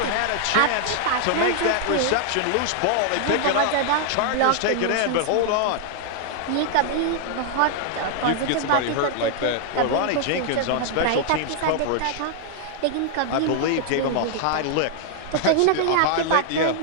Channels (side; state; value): both; different; correlation 0.00